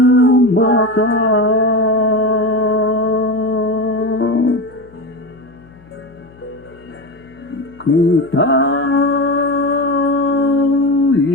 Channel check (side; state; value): left; noise; hum, 26 dB below the sound